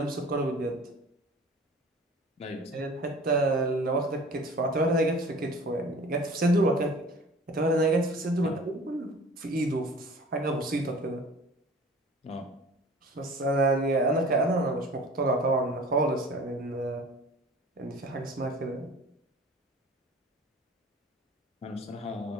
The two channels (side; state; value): both; normal; correlation 0.45